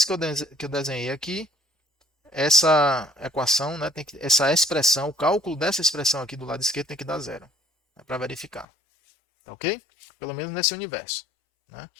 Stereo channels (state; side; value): drops out; right; at 8.7 s